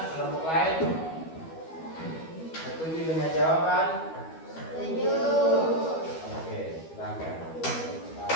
kelompok lain? Setuju dengan jawaban? Setuju. Oke, silakan.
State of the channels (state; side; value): late; right; 12 ms